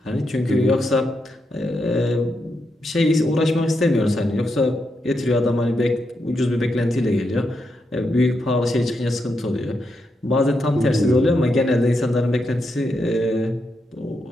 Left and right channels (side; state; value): both; normal; correlation 0.83